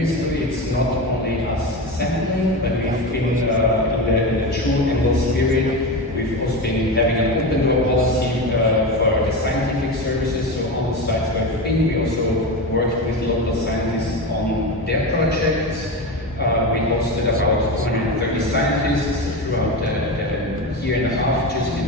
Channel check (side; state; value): both; normal; correlation 0.21